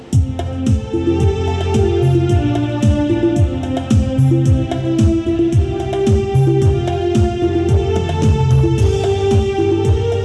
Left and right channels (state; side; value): identical; both; correlation 1.00